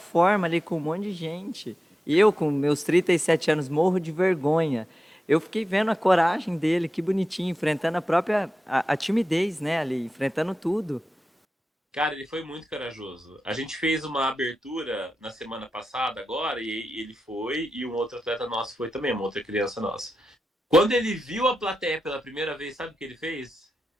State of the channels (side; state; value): both; normal; correlation 0.90